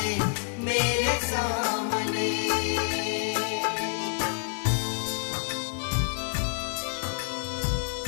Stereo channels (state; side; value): silent; right; digital silence